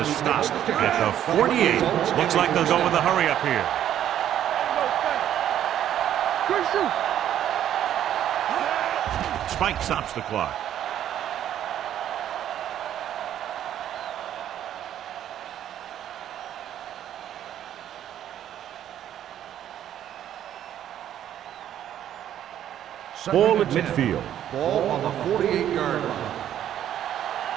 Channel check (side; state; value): left; quieter; 10.9 dB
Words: stop at the 48. Looks like they'll go with a hurry up here. Good shoot. Spike stops the clock. Ball at midfield. Ball on the 48-yard line.